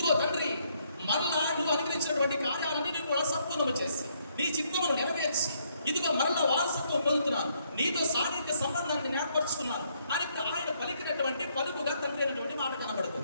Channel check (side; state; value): both; inverted; correlation -0.71